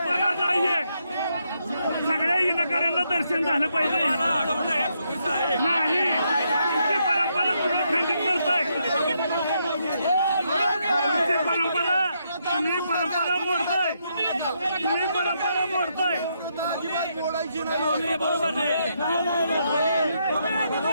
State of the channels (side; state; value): both; inverted; correlation -0.78